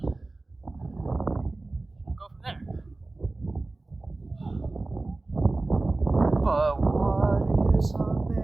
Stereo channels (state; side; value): quieter; left; 3.2 dB